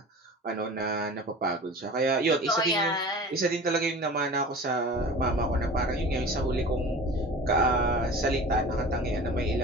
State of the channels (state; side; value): normal; both; correlation 0.38